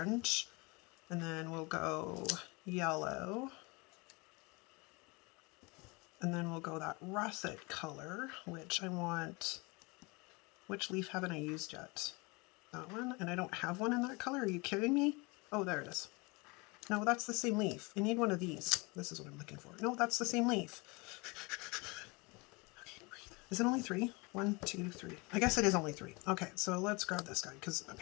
and then we'll go yellow, and then we'll go that russet color, which I want. Which leaf haven't I used yet? That one? And I don't have one in that color. Are you kidding me? Oh, there it is. No, that's the same leaf. I need one of these. This is what I'm looking for. No, that's the same leaf. Okay, breathe. Is it only 3? 1, 2, 3. I guess it is only 3. Okay, so let's grab this guy because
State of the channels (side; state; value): right; quieter; 27.0 dB